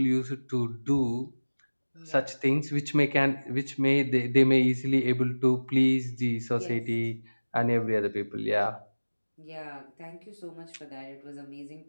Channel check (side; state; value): both; inverted; correlation -1.00